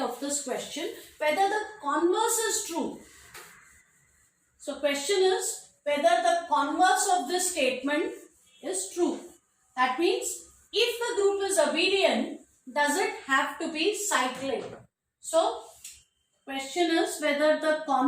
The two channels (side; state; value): both; identical; correlation 1.00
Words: this question, whether the converse is true. So question is whether the converse of this statement is true. That means if the group is abelian, does it have to be cyclic? So question is whether the